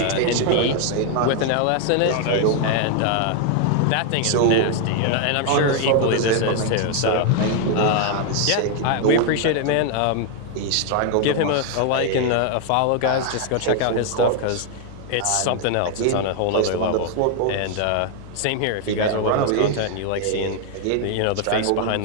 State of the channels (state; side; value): different; both; correlation 0.00